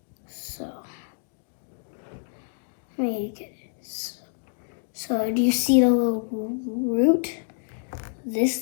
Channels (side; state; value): right; silent; digital silence